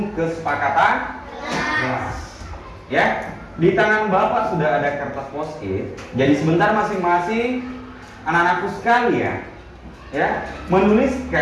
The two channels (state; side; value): identical; both; correlation 1.00